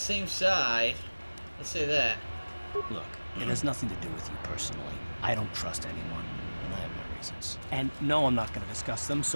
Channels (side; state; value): both; inverted; correlation -1.00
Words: side. Let's say that. Look, it has nothing to do with you personally. I don't trust anyone, and I have my reasons. And no, I'm not going to discuss them,